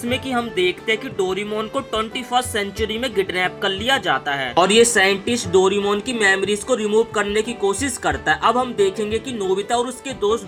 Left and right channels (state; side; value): identical; both; correlation 1.00